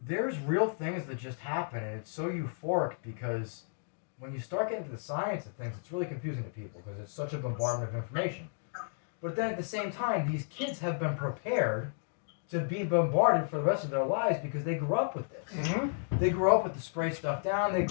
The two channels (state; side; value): silent; right; digital silence